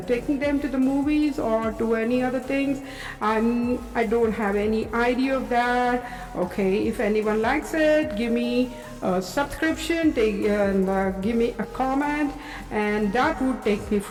taking them to the movies or to any other things. I don't have any idea of that. Okay, if anyone likes it, give me a subscription, give me a comment, and that would take me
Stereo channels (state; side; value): identical; both; correlation 1.00